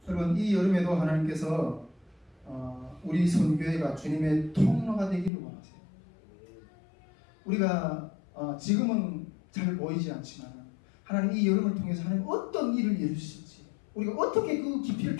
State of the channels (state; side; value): drops out; right; at 5.3 s